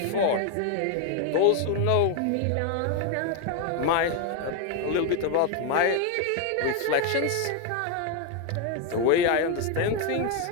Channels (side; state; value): both; different; correlation 0.01